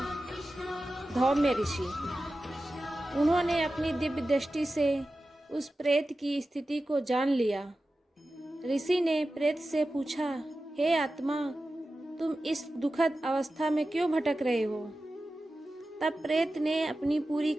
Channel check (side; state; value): both; normal; correlation 0.94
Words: धौम्य ऋषि। उन्होंने अपनी दिव्य दृष्टि से उस प्रेत की स्थिति को जान लिया। ऋषि ने प्रेत से पूछा, हे आत्मा, तुम इस दुखद अवस्था में क्यों भटक रहे हो? तब प्रेत ने अपनी पूरी